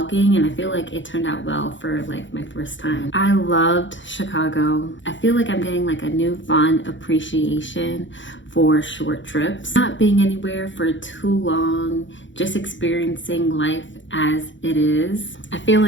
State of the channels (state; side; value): late; right; 0.55 ms